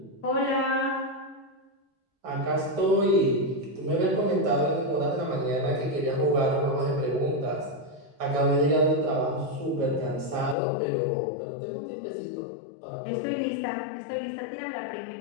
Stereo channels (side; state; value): right; drops out; at 10.6 s